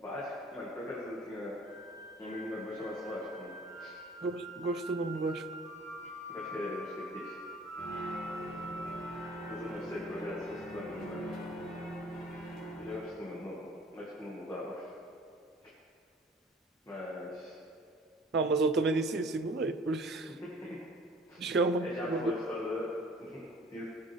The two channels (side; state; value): both; normal; correlation 0.50